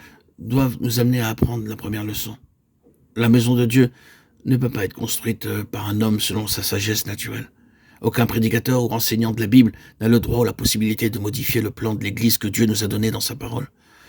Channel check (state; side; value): identical; both; correlation 1.00